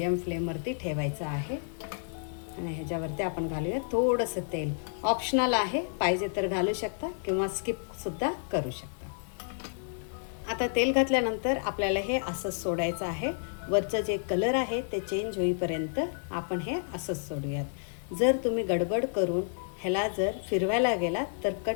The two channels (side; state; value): right; silent; digital silence